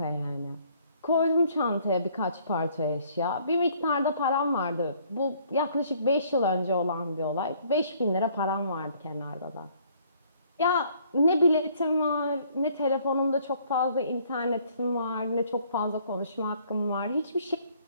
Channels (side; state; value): both; inverted; correlation -0.62